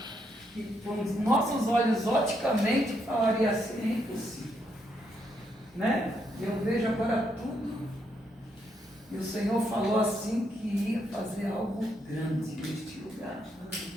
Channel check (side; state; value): both; normal; correlation 0.77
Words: que, com os nossos olhos, oticamente, falaria assim: é impossível. Né? Eu vejo agora tudo, e o Senhor falou assim que ia fazer algo grande neste lugar.